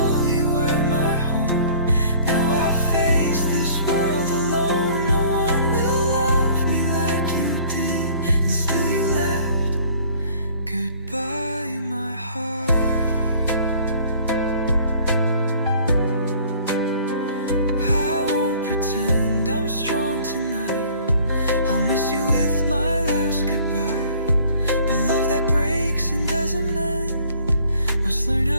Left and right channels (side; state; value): both; inverted; correlation -0.53